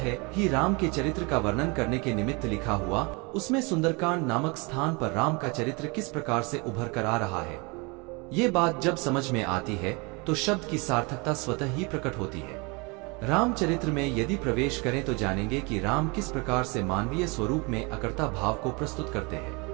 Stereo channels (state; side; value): quieter; left; 28.8 dB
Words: ही राम के चरित्र का वर्णन करने के निमित्त लिखा हुआ, उसमें सुंदरकांड नामक स्थान पर राम का चरित्र किस प्रकार से उभर कर आ रहा है, ये बात जब समझ में आती है तो शब्द की सार्थकता स्वतः ही प्रकट होती है। रामचरित्र में यदि प्रवेश करें तो जानेंगे कि राम किस प्रकार से मानवीय स्वरूप में अकर्ता भाव को प्रस्तुत करते हैं।